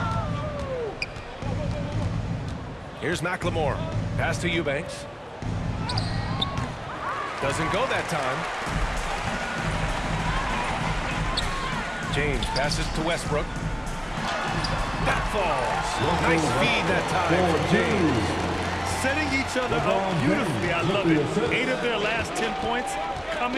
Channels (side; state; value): both; identical; correlation 1.00